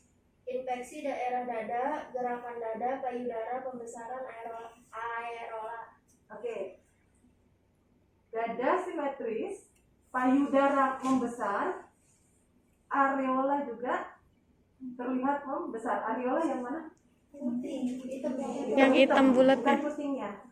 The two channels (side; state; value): both; identical; correlation 1.00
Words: Infeksi daerah dada, gerakan dada, payudara, pembesaran aerola. Oke. Dada simetris, payudara membesar, areola juga terlihat membesar. Areola yang mana? Putih, hitam Yang hitam bulat bukan ya? putingnya,